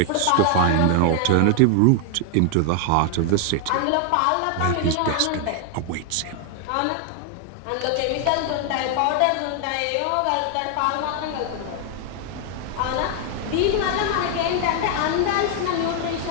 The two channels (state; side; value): different; both; correlation 0.00